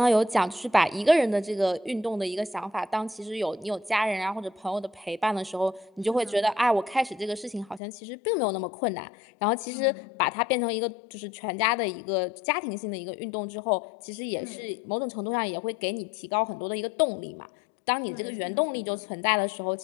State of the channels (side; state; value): right; drops out; at 7.8 s